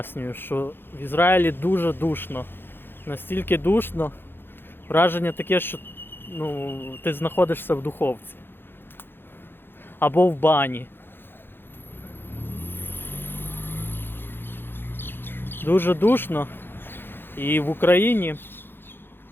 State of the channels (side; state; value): right; late; 0.10 ms